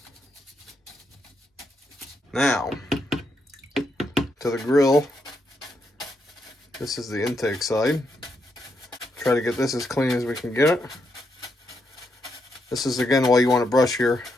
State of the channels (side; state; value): both; normal; correlation 0.80